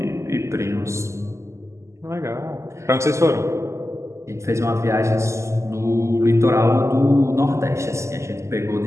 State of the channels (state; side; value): late; left; 0.13 ms